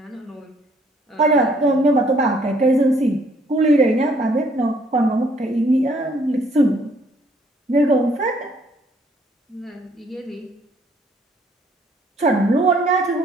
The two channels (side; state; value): both; normal; correlation 0.64